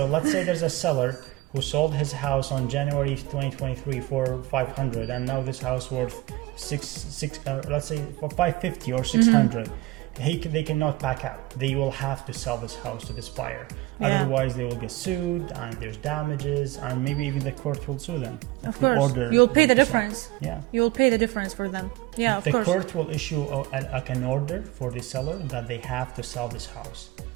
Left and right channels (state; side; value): quieter; left; 18.9 dB